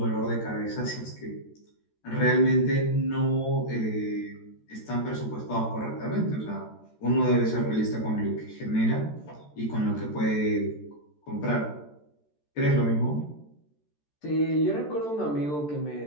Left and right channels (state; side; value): late; right; 14 ms